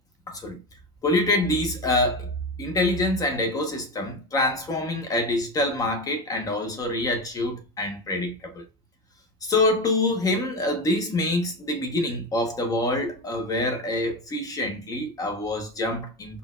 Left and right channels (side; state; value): both; normal; correlation 0.19